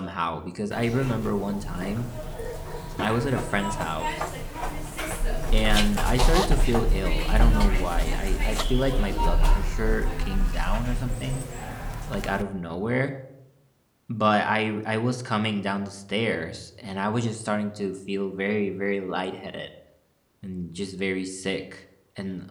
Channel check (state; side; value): identical; both; correlation 1.00